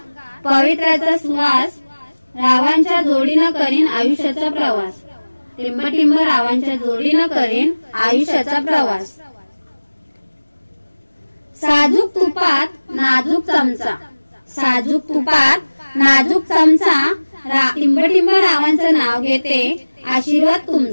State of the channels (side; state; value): both; inverted; correlation -1.00